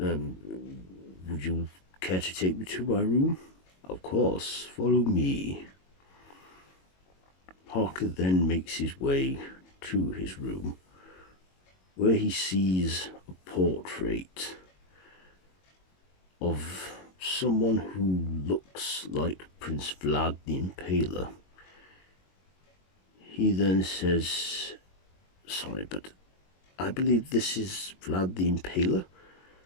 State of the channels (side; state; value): right; late; 22 ms